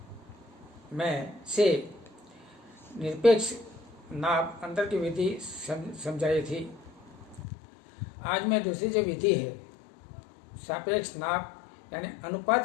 में से निरपेक्ष नाप अंतर की विधि समझाई थी। आज मैं दूसरी जो विधि है सापेक्ष नाप यानी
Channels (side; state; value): right; drops out; at 7.5 s